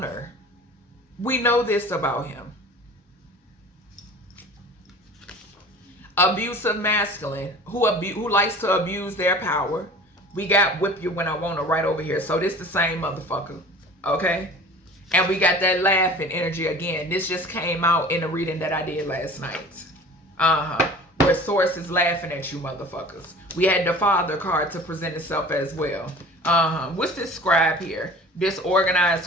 We know this about him. Abusive masculine who likes to abuse their power. We got whip you when I wanna right over here. So this the same motherfucker. Okay? And we got that laughing energy again. This just came out in the reading that I did last night. Where source is laughing at you motherfuckers. We had the father card to present itself as well. What's this scribe here? This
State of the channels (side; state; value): both; normal; correlation 0.42